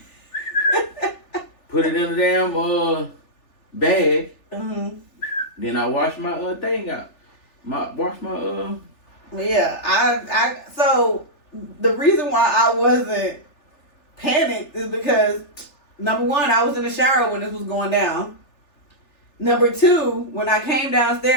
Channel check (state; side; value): late; right; 3.4 ms